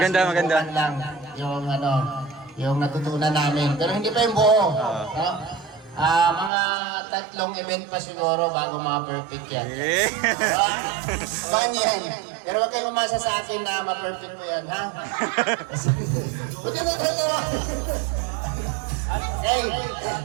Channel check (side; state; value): left; drops out; at 6.5 s